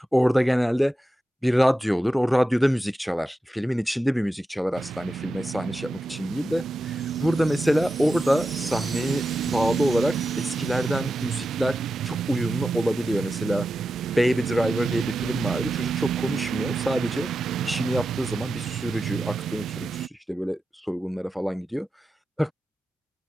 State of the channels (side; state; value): both; normal; correlation 0.91